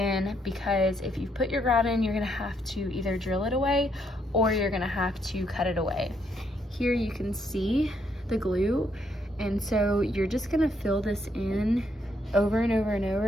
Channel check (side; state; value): both; normal; correlation 0.74